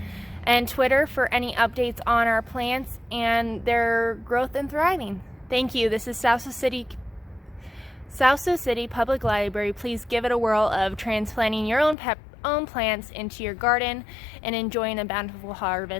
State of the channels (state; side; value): drops out; right; at 12.0 s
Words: and Twitter for any updates on our plants and their growth and thriving. Thank you. This is Sioux City Public Library. Please give it a whirl of transplanting your own plants into your garden and enjoying a bountiful